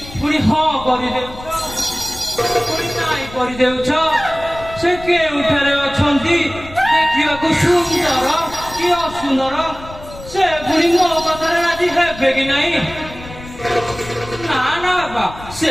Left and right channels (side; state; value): left; noise; rumble, 16 dB below the sound